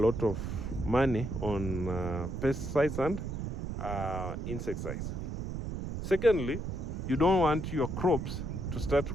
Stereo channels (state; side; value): noise; right; rumble, 4 dB below the sound